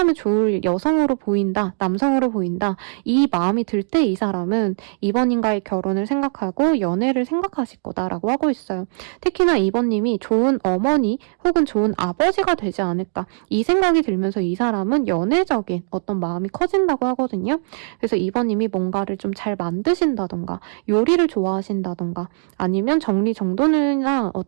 좋을 여성으로 보인다, 남성으로 보인다, 이 마음이 들 때 이 사람은 이번님과의 결혼을 생각하고 연애를 생각하실 거다라고 하고 있어요. 특히나 이번님이 좋은 어머니 혹은 좋은 아버지가 되지 않을까, 이 생각이 들면서 이 사람은 연애적인 어떤 마음이 커진다고 하거든요. 그래서 이번님이 뭔가를 좀 잘 만드신다던가 요리를 좋아하신다던가 아니면 정리정돈이나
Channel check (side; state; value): left; silent; digital silence